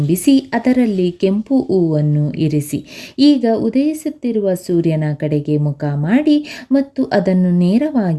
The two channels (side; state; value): both; identical; correlation 1.00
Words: ಅದರಲ್ಲಿ ಕೆಂಪು ಹೂವನ್ನು ಇರಿಸಿ. ಈಗ ಉದಯಿಸುತ್ತಿರುವ ಸೂರ್ಯನ ಕಡೆಗೆ ಮುಖ ಮಾಡಿ ಮತ್ತು ಅದನ್ನು